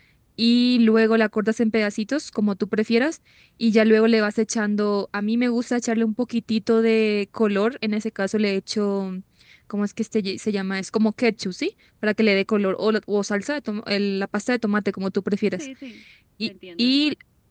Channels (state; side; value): identical; both; correlation 1.00